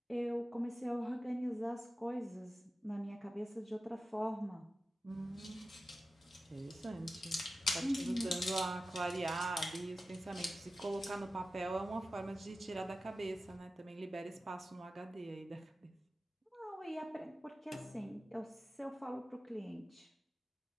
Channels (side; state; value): both; normal; correlation 0.94